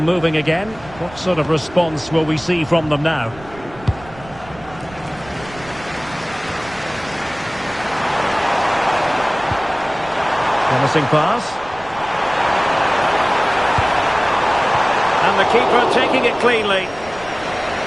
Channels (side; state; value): right; noise; rumble, 20 dB below the sound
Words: again. What sort of response will we see from them now? Promising pass. And the keeper taking it cleanly.